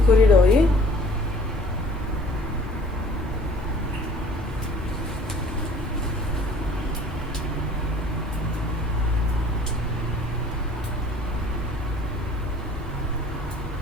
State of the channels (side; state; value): both; normal; correlation 0.52